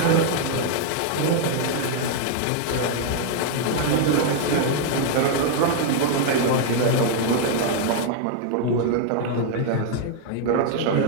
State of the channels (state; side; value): different; both; correlation 0.00